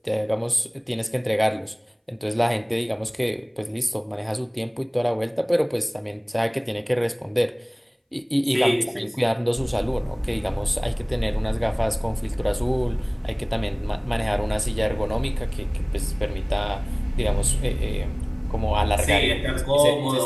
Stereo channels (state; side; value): identical; both; correlation 1.00